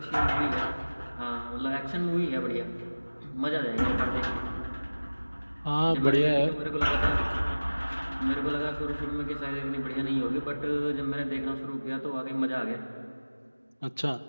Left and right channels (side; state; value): both; inverted; correlation -1.00